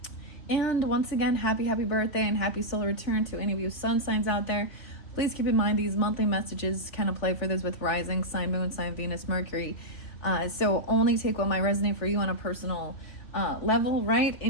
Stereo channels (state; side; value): late; right; 3.2 ms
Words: And once again, happy birthday and happy solar return to any of you sun signs out there. Please keep in mind these monthly messages can apply for this with rising sign, moon sign, Venus, Mercury. So only take what might resonate for you on a personal level, right?